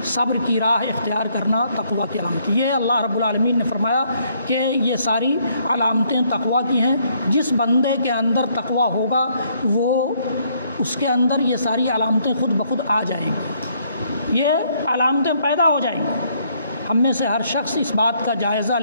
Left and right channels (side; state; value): both; inverted; correlation -0.69